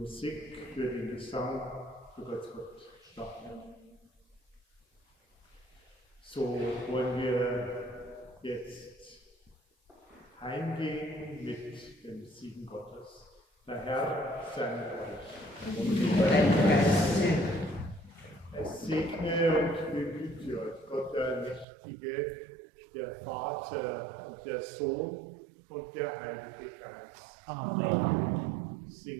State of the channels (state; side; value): drops out; left; at 21.7 s